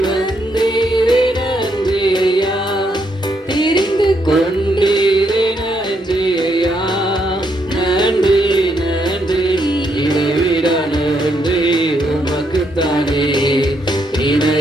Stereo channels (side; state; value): both; normal; correlation 0.76